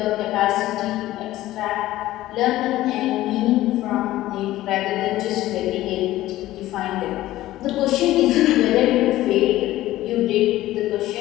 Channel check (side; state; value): right; quieter; 15.5 dB